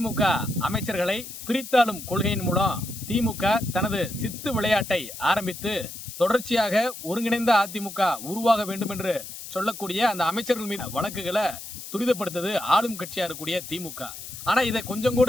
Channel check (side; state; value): left; noise; hiss, 11 dB below the sound